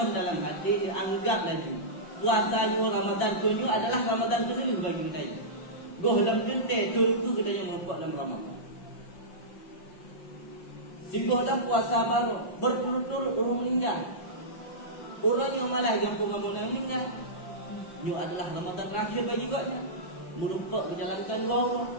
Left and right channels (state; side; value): late; right; 5.6 ms